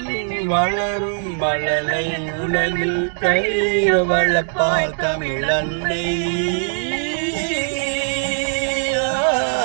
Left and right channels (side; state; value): left; silent; digital silence